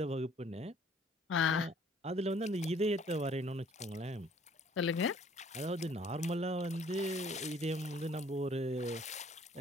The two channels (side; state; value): both; normal; correlation 0.58